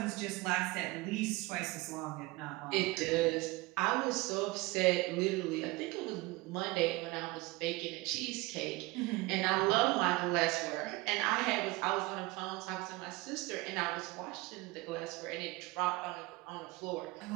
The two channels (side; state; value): left; quieter; 21.7 dB